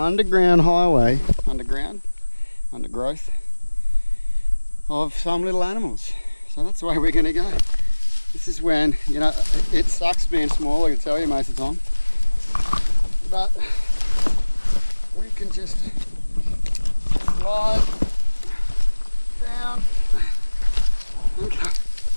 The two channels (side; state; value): both; inverted; correlation -1.00